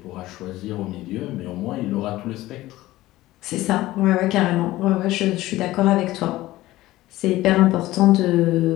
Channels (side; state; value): right; quieter; 16.9 dB